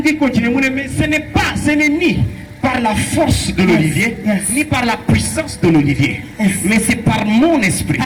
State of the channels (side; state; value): both; identical; correlation 1.00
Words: tu continues, mais ce n'est ni par la force de l'olivier, ni par la puissance de l'olivier, mais c'est par mon esprit.